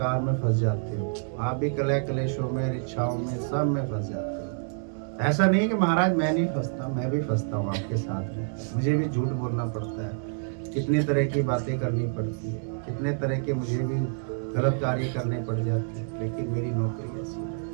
में फंस जाते हो, आप भी कलह कलेशों में, इच्छाओं में, सब में फंस जाते हो। ऐसा नहीं कि महाराज मैं नहीं फंसता, मैं भी फंसता हूँ आपके साथ में, मुझे भी झूठ बोलना पड़ता है, कितनी तरह की बातें करनी पड़ती है, कितने तरह के मुझे भी गलत कार्य करने पड़ जाते हैं, लेकिन मेरी नौकरी ऐसी है।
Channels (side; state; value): left; silent; digital silence